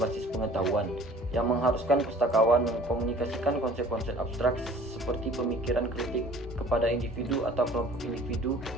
pengetahuan, yang mengharuskan pustakawan mengkomunikasikan konsep-konsep abstrak seperti pemikiran kritik kepada individu atau kelompok individu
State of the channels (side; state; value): both; normal; correlation 0.50